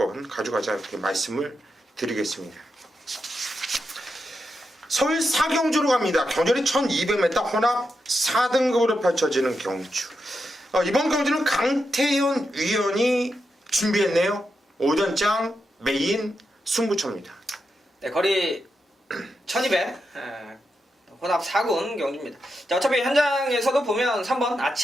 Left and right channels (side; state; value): both; normal; correlation 0.86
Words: 가져가자, 이렇게 말씀을 드리겠습니다. 서울 사경주로 갑니다. 경주리 1200m 혼합 4등급으로 펼쳐지는 경주. 이번 경주는 강태현 위원이 준비했네요. 오전장 메인 승부처입니다. 네, 거리 1200 혼합 4군 경주입니다. 자, 어차피 현장에서도 보면 3번